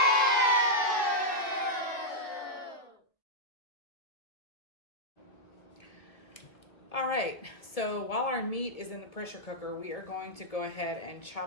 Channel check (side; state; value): right; late; 1.5 ms